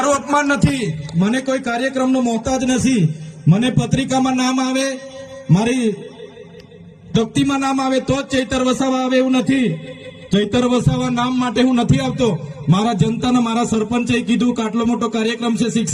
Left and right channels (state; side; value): identical; both; correlation 1.00